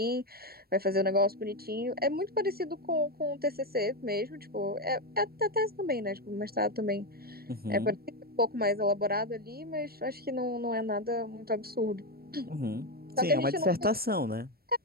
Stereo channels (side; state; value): left; late; 0.44 ms